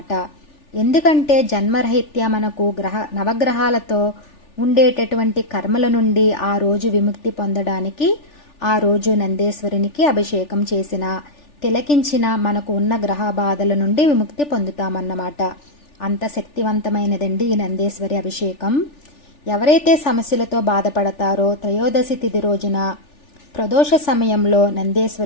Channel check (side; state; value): right; late; 3.4 ms